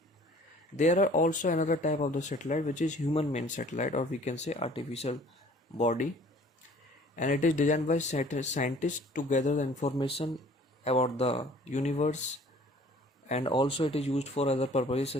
There are also another type of the satellite which is human made satellite, or we can say artificial body, and it is designed by scientists to gather the information about the universe, and also it is used for other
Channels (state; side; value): normal; both; correlation 0.52